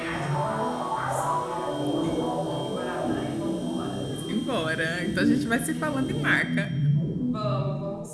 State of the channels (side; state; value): both; identical; correlation 1.00